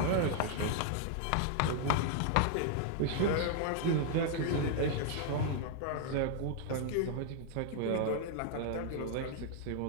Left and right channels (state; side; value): different; both; correlation 0.00